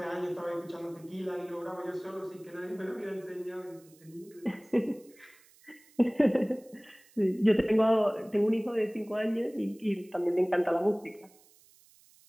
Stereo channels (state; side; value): noise; right; hiss, 28 dB below the sound